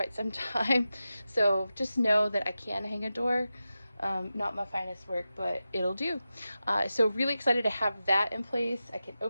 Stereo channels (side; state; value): both; inverted; correlation -0.92